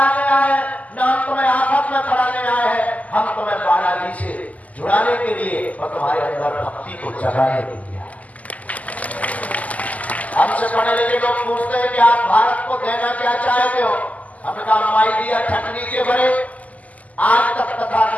आए हैं, न हम तुम्हें आफत में पढ़ाने आए हैं। हम तुम्हें बालाजी से जुड़ाने के लिए और तुम्हारे अंदर भक्ति को जगाने के लिए। हमसे पढ़े लिखे लोग पूछते हैं कि आप भारत को देना क्या चाहते हो, हमने कहा माई दिया ठकनी के भरे। आज तक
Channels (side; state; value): right; late; 0.075 ms